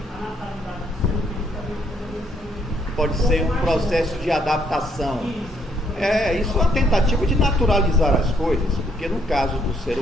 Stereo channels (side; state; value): both; normal; correlation 0.70